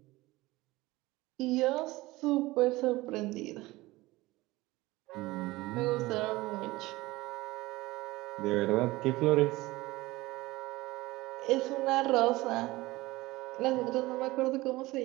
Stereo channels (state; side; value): quieter; left; 19.8 dB